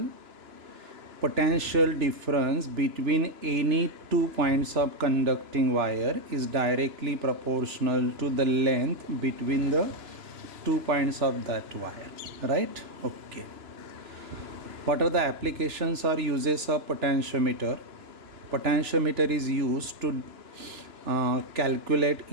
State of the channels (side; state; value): left; late; 3.0 ms